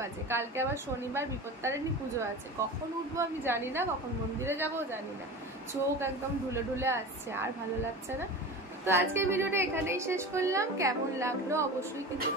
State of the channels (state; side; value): normal; both; correlation 0.32